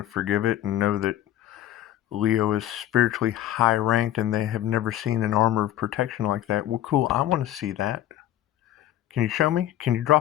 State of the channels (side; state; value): right; quieter; 12.8 dB